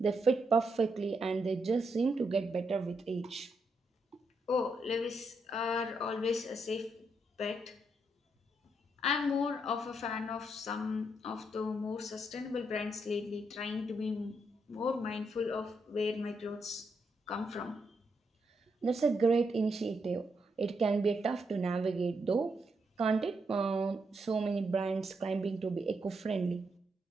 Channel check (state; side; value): normal; both; correlation 0.80